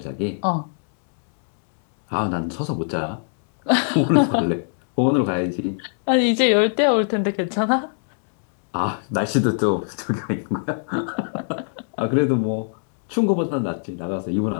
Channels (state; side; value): silent; right; digital silence